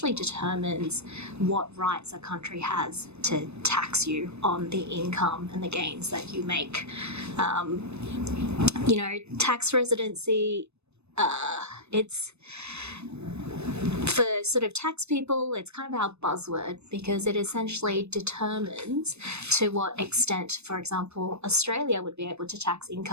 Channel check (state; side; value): late; left; 0.81 ms